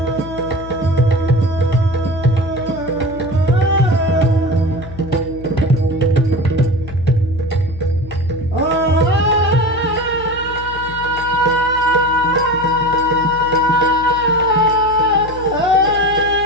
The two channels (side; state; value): left; noise; hum, 14 dB below the sound